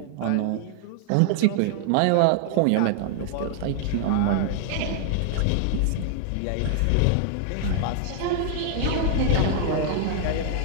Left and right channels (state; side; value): different; both; correlation 0.00